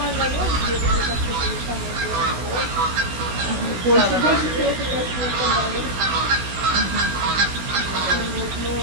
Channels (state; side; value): late; left; 16 ms